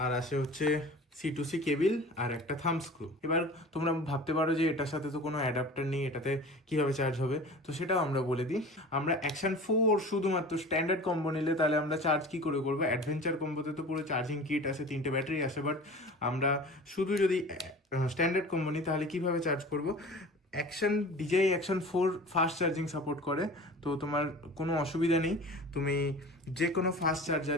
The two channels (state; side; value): normal; both; correlation 0.39